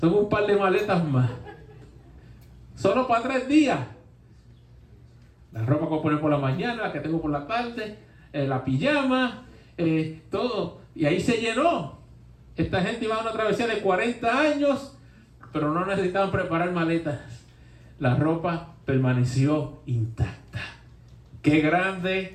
un par de maletas más. Solo para 3 días. La ropa que voy a poner por la mañana, la que tengo por la tarde, la pijama, todo. Y ahí se llenó. Esta gente iba a una travesía de 40 años, pero no necesitaban preparar maletas. La ropa permaneció intacta. Qué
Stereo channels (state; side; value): identical; both; correlation 1.00